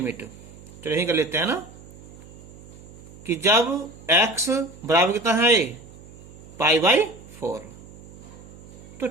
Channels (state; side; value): noise; right; hum, 19 dB below the sound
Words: तो यही कर लेते हैं ना कि जब x बराबर कितना है π/4 तो